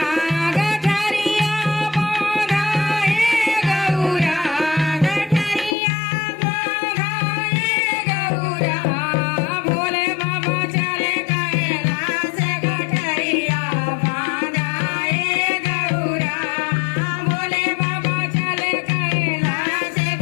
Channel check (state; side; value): drops out; right; at 5.8 s